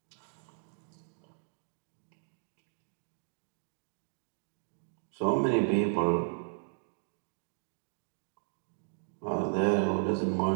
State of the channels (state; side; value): silent; left; 54 dB below the other